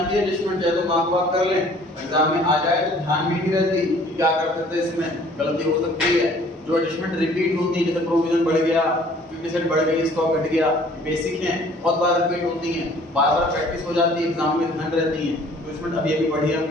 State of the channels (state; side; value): normal; both; correlation 0.54